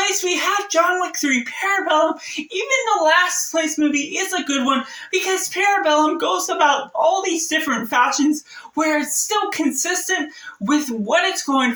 we have John Wick 3 Parabellum. Even the last place movie is a good one because Parabellum goes about all these different fashions where it's still consistent with what it's going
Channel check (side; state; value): both; identical; correlation 1.00